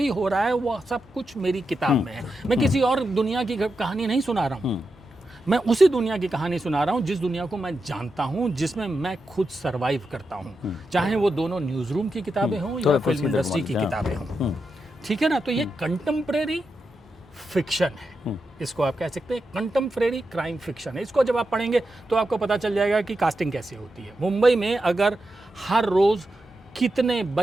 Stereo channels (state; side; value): normal; both; correlation 0.88